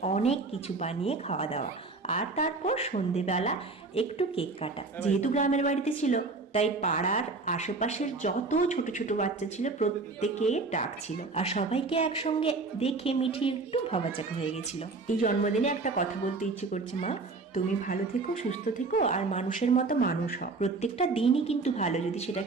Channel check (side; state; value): left; quieter; 3.8 dB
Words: অনেক কিছু বানিয়ে খাওয়া দাওয়া। আর তারপর সন্ধেবেলা একটু কেক কাটা। যেহেতু গ্রামের বাড়িতে ছিল, তাই পাড়ার আশেপাশের যত ছোট ছোট বাচ্চা ছিল প্রত্যেকে ডাকছিল, আর সবাইকে একসঙ্গে দেখে মিঠি একটু ভাবাচাকা হয়ে গেছিল। এই জন্মদিনে একটা কথা বলতে ইচ্ছে করছে, মা তুমি ভালো থেকো, সুস্থ থেকো, আর মানুষের মতো মানুষ হও। প্রত্যেকটা দিনই কিন্তু ভালো যদি